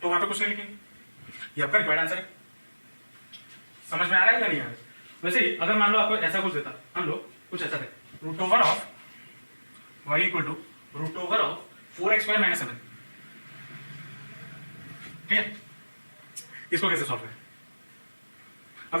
तो वहां पे कुछ नहीं लिखेंगे, ये आपका रिक्वायर्ड आंसर है। समझ में आ रहा है क्या नहीं आ रहा है। वैसे ही अगर मान लो आपको ऐसा कुछ देता, मान लो कुछ ऐसा है, root over of y equal to root over of 4x square minus 7, ठीक है, इसको कैसे सॉल्व करें। अब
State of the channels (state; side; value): inverted; both; correlation -1.00